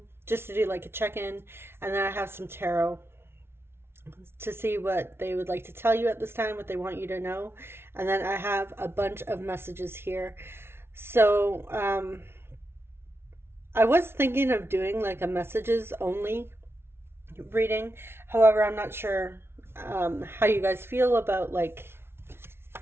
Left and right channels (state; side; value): late; left; 0.12 ms